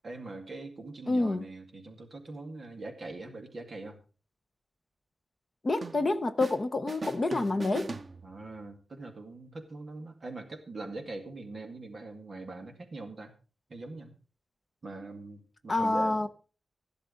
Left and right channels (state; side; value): normal; both; correlation 0.94